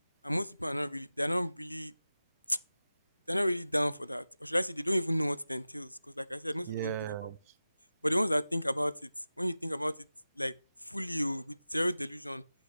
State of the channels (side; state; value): both; inverted; correlation -0.95